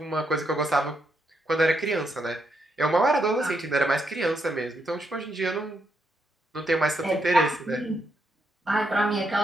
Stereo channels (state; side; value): normal; both; correlation 0.80